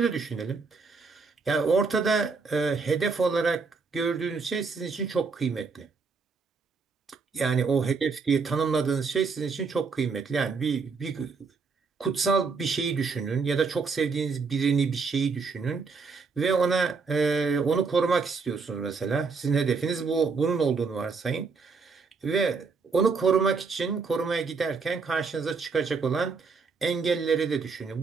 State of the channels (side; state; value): left; quieter; 4.8 dB